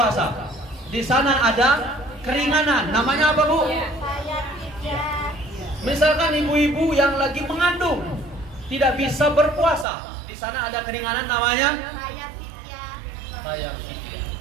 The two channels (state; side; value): drops out; left; at 9.9 s